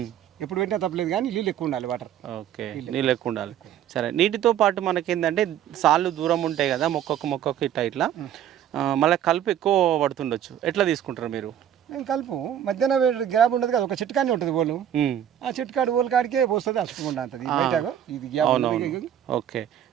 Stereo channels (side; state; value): left; quieter; 10.3 dB